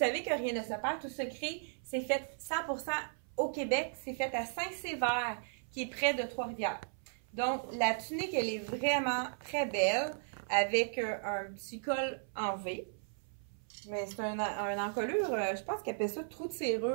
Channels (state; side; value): silent; left; 54 dB below the other